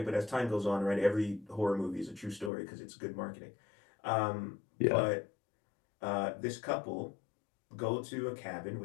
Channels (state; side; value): drops out; right; at 2.5 s